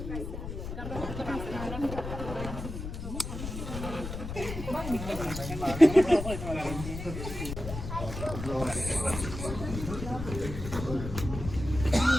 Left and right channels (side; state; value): left; noise; rumble, 7 dB below the sound